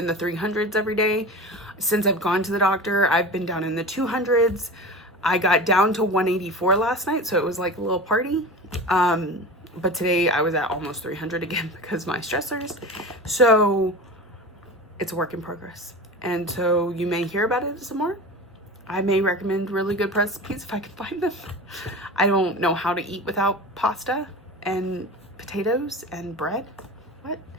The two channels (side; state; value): both; normal; correlation 0.31